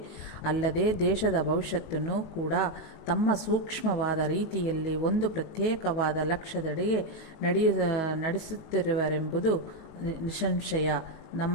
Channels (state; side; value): late; right; 19 ms